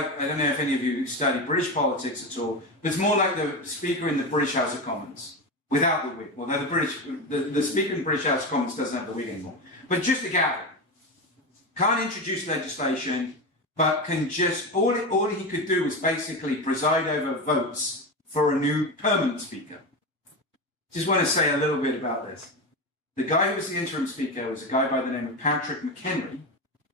I don't know if any of you study British politics at all, but it's more like the speaker in the British House of Commons, without the wig. Although the speaker in the British House of Commons doesn't have the wig anymore. But just a gavel. Can't introduce legislation, but can just, all he could do was basically preside over votes for a new permanent speaker. Just want to say a little bit about this. The guy who was the interim speaker was a guy by the name of Patrick McHenry,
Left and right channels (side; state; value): both; normal; correlation 0.19